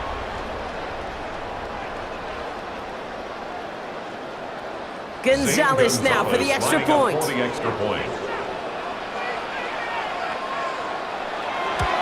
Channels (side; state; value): both; identical; correlation 1.00